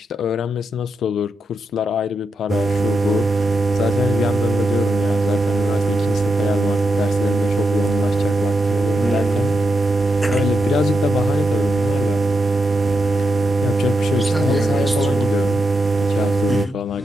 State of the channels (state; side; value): normal; both; correlation 0.85